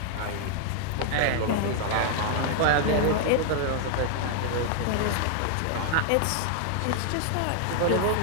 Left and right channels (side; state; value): both; different; correlation 0.00